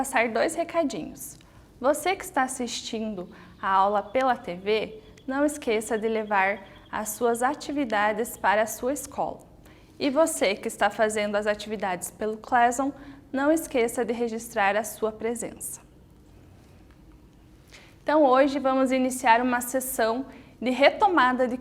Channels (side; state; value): both; identical; correlation 1.00